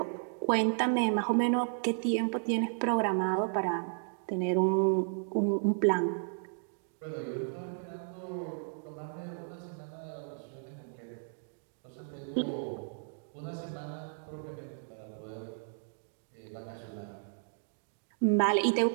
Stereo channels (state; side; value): silent; left; digital silence